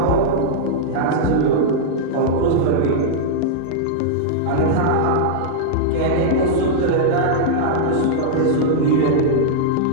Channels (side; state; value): both; different; correlation -0.02